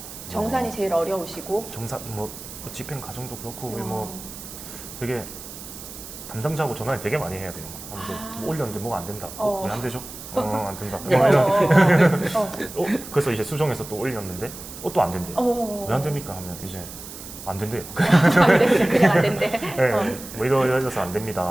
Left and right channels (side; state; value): right; noise; hiss, 13 dB below the sound